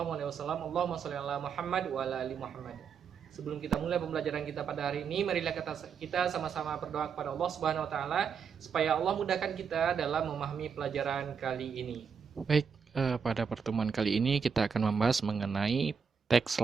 sholli ala Muhammad wa ala ali Muhammad. Sebelum kita mulai pembelajaran kita pada hari ini, marilah kita sama-sama berdoa kepada Allah Subhanahu wa taala supaya Allah mudahkan kita dalam memahami pelajaran kali ini. Baik, pada pertemuan kali ini kita akan membahas mengenai text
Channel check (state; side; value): quieter; left; 6.4 dB